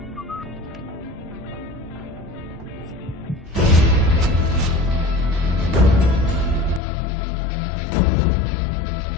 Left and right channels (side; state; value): right; drops out; at 6.8 s